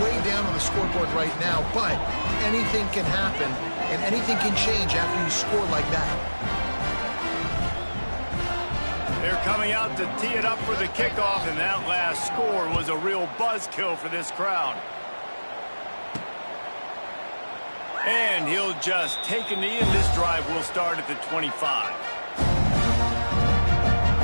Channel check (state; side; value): inverted; both; correlation -1.00